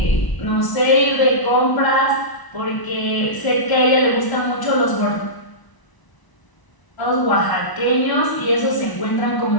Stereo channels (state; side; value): late; right; 1.0 ms